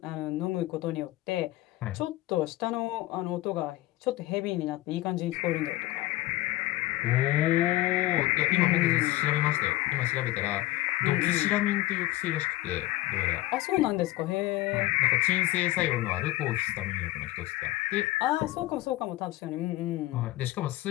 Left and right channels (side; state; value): right; quieter; 17.4 dB